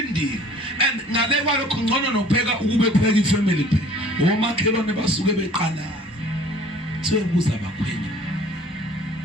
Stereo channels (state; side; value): normal; both; correlation 0.51